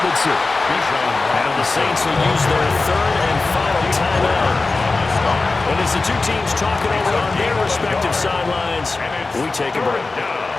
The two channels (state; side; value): quieter; right; 3.6 dB